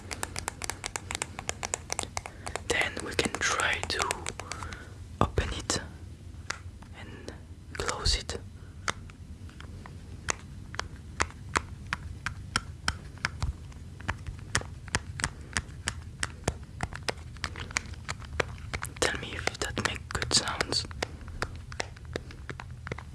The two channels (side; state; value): both; identical; correlation 1.00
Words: Then we can try to open it and close it. Tell me if that makes good sounds.